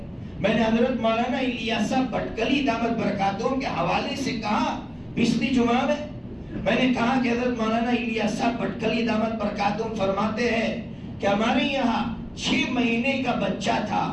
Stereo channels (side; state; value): both; identical; correlation 1.00